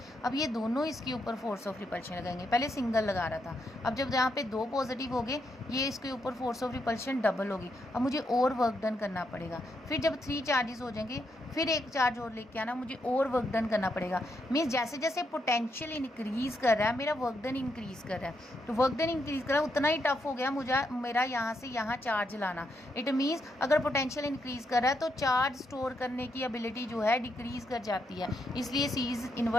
अब ये दोनों इसके ऊपर फोर्स ऑफ रिपल्शन लगाएंगे। पहले सिंगल लगा रहा था, अब जब यहाँ पे दो पॉजिटिव हो गए, ये इसके ऊपर फोर्स ऑफ रिपल्शन डबल होगी। अब मुझे और वर्क डन करना पड़ेगा। फिर जब 3 चार्जेस हो जाएंगे, फिर एक चार्ज और लेके आना, मुझे और वर्क डन करना पड़ेगा। मीन्स जैसे जैसे पोटेंशियल इंक्रीज़ कर रहा है, मेरा वर्क डन इंक्रीज़ कर रहा है। तो वर्क डन इंक्रीज़ कर रहा है, उतना ही टफ हो गया मुझे मेरा यहाँ से यहाँ चार्ज लाना। इट मीन्स अगर पोटेंशियल इंक्रीज़ कर रहा है तो चार्ज स्टोर करने की एबिलिटी जो है डिक्रीज़ कर जाती है, इसलिए C is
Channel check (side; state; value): both; normal; correlation 0.79